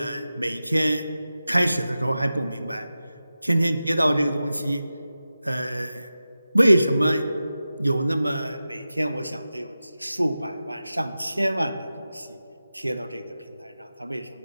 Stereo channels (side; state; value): both; inverted; correlation -0.94